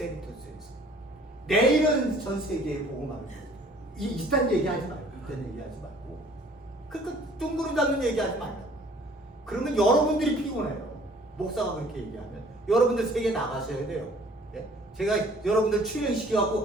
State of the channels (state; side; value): normal; both; correlation 0.54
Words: 내일은 전 세계에 복음하는 거예요. 이딴 얘기하지 말고, 그러니까 둥그름 잡는 얘기하지 말고. 그러면 여러분들이 피곤해요. 목사가 그렇게 얘기하면 여러분들 세계 나가셔야 돼요. 예? 제가 여러분들